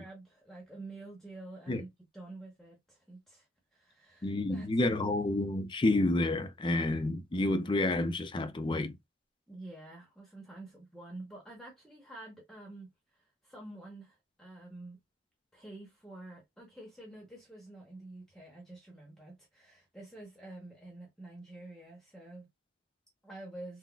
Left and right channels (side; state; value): both; normal; correlation 0.68